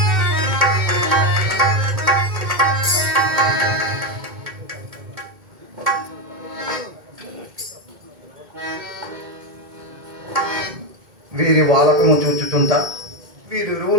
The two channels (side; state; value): left; late; 2.2 ms